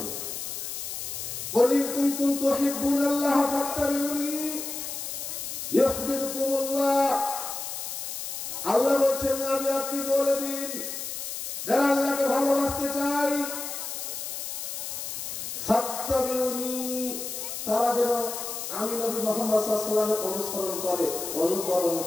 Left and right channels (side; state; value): left; noise; hiss, 6 dB below the sound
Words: কুল ইন কুনতুম তুহিব্বুনাল্লাহ ফাত্তাবিউনি ইউহিব্বুকুমুল্লাহ। আল্লাহ বলছেন নবী আপনি বলে দিন যারা আল্লাহকে ভালোবাসতে চায় ফাত্তাবিউনি, তারা যেন আমি নবী মুহাম্মদ সাল্লাল্লাহু আলাইহি ওয়াসাল্লামের অনুসরণ করে, অনুকরণ